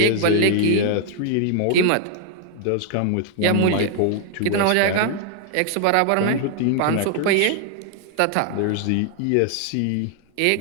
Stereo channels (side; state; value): both; different; correlation 0.00